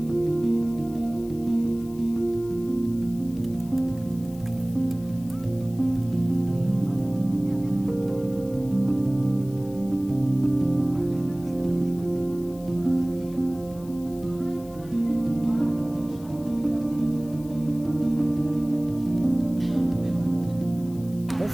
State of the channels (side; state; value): left; noise; hiss, 23 dB below the sound